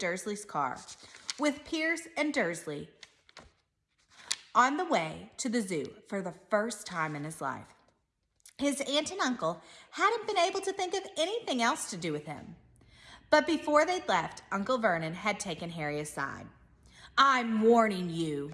car with Piers and Dursley on the way to the zoo for the first time in his life. His aunt and uncle hadn't been able to think of anything else to do with him. But before they'd left, Uncle Vernon had taken Harry aside. "I'm warning you,"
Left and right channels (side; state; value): both; identical; correlation 1.00